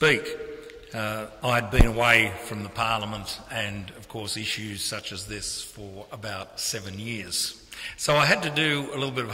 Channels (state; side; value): identical; both; correlation 1.00